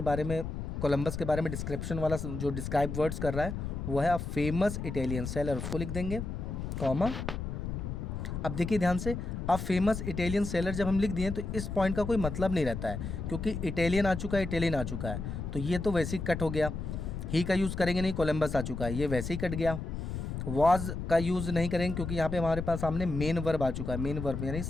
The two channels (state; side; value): noise; left; rumble, 5 dB below the sound